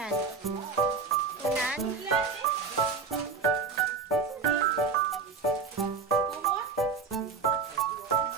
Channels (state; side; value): quieter; left; 4.9 dB